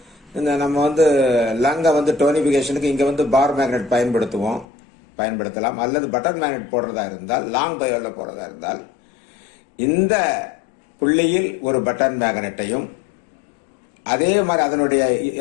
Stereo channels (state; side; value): drops out; right; at 4.7 s